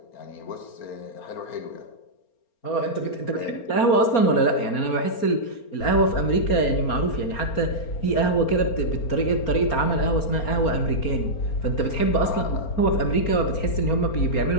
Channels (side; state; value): right; late; 4.3 ms